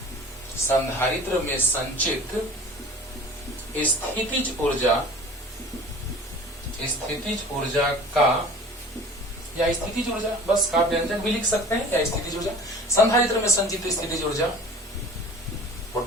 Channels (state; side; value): normal; both; correlation 0.43